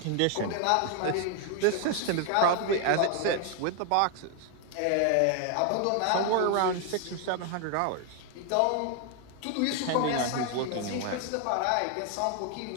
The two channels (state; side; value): different; both; correlation 0.01